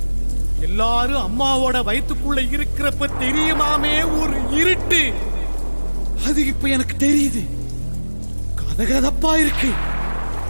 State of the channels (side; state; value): both; inverted; correlation -1.00